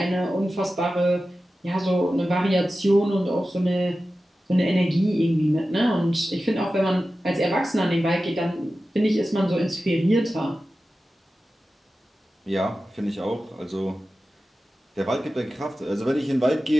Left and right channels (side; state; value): both; normal; correlation 0.94